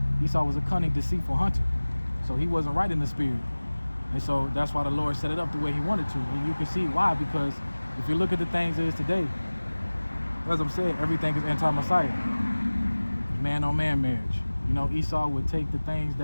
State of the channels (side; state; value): both; inverted; correlation -1.00